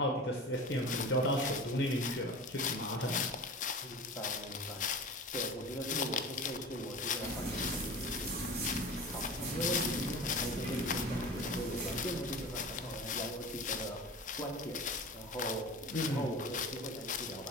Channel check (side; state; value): both; normal; correlation 0.35